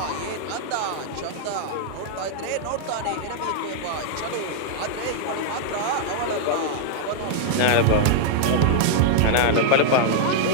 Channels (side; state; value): both; different; correlation -0.01